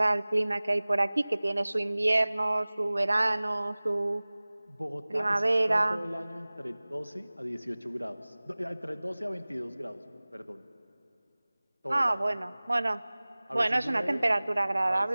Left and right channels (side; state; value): both; inverted; correlation -0.99